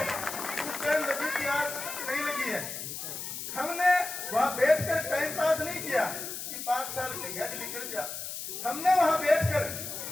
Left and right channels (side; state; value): left; noise; hiss, 7 dB below the sound